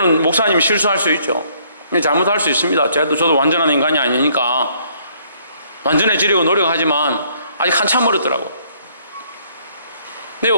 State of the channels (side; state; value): both; inverted; correlation -0.64